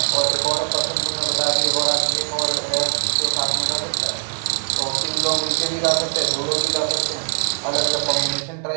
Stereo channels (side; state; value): left; silent; digital silence